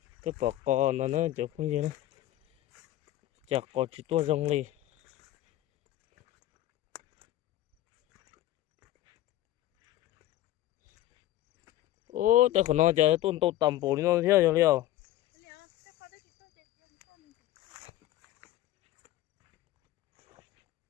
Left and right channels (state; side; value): quieter; right; 14.4 dB